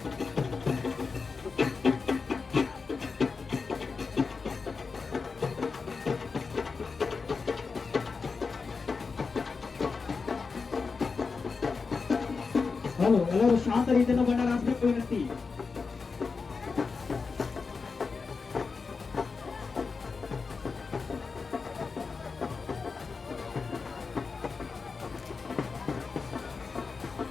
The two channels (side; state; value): right; quieter; 4.8 dB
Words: ಹಲೋ, ಎಲ್ಲರೂ ಶಾಂತ ರೀತಿಯಿಂದ ಬಂಡಾರ ಹಾಕಬೇಕು ವಿನಂತಿ.